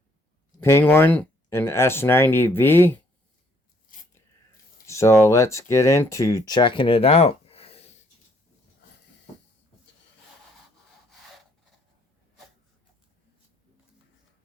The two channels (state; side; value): normal; both; correlation 0.66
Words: penguin and S90v. So let's get into checking it out.